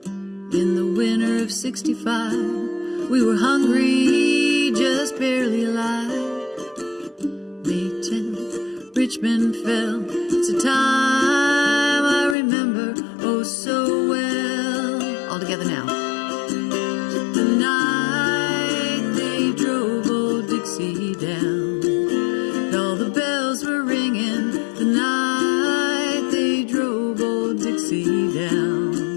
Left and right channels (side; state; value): right; drops out; at 12.4 s